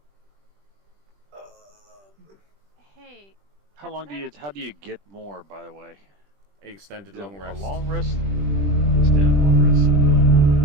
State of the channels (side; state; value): left; late; 20 ms